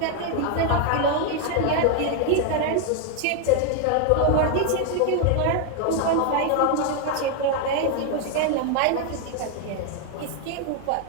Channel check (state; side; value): different; both; correlation 0.00